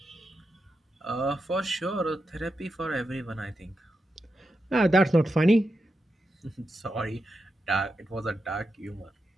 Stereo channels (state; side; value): normal; both; correlation 0.87